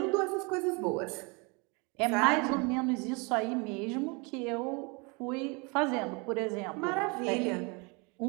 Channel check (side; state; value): left; quieter; 30.3 dB